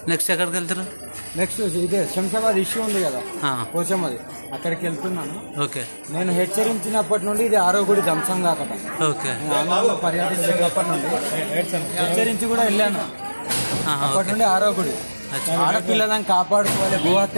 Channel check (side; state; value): both; inverted; correlation -1.00